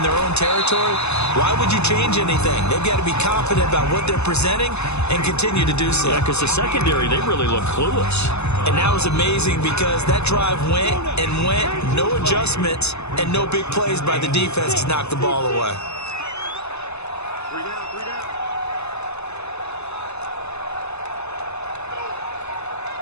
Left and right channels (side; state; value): right; late; 0.80 ms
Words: their own territory, why would you change anything? They've got to be confident about what they're presenting and continue to do so. Yeah, because the secondary, they really look clueless. And that was amazing because that drive went and went, no adjustments, and no big plays by the defense to knock the ball away.